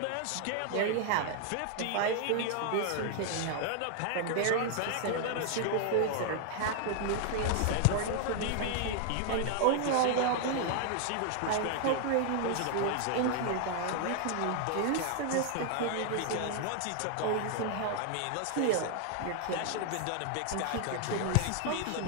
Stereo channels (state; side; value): different; both; correlation 0.00